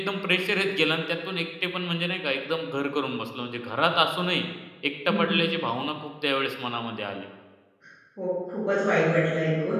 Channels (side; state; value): both; identical; correlation 1.00